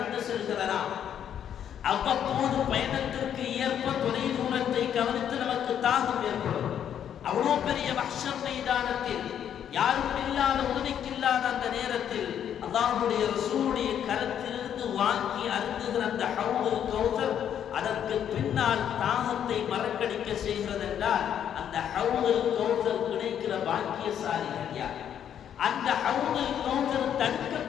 செல்கிறதாம். அவ்வப்போது பயணத்திற்கு ஏற்ப தொலை தூரத்தை கவனித்து நமக்கு தாகம் ஏற்படும். அவ்வளோ பெரிய மஹ்ஷர் மைதானத்தில் யாரும் இல்லாத உதவிக்கில்லாத அந்த நேரத்தில் அல்லாஹ்வுடைய ரசூலுடைய கரத்திலிருந்து வாங்கி அருந்துகிற அந்த ஹௌதுல் கௌசர் அதற்கு பின்னால் தாகத்தை மறக்கடிக்க செய்கிறது என்றால் அந்த ஹௌதுல் கௌசர் கிடைக்கிற பாக்கியசாலிகள் யார்? அந்த ஹௌதுல் கௌசர்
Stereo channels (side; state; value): right; quieter; 9.4 dB